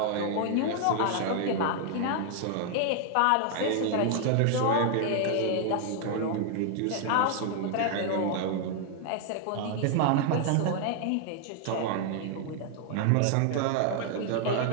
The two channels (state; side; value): different; both; correlation 0.00